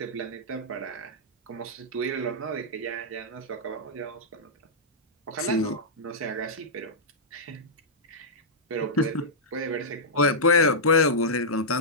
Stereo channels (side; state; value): both; normal; correlation -0.11